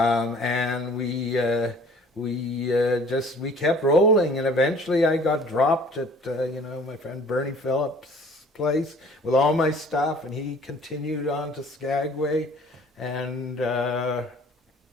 we kept rolling. And eventually, I got dropped at my friend Bernie Phillips' place with all my stuff, and he continued on to Skagway, and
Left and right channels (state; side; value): normal; both; correlation 0.52